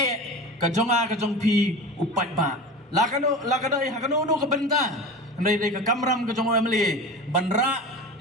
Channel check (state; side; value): normal; both; correlation 0.31